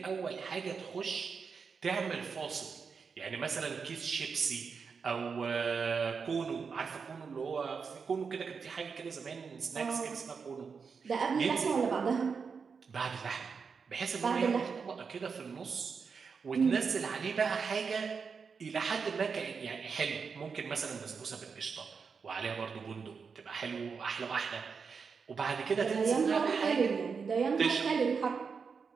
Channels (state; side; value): quieter; left; 5.6 dB